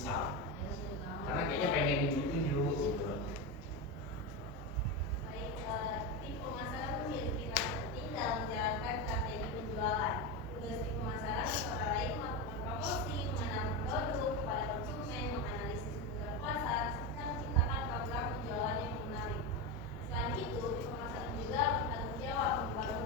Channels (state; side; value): normal; both; correlation 0.15